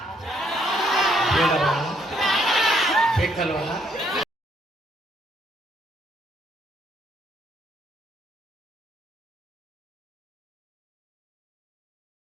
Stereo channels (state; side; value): normal; both; correlation 0.70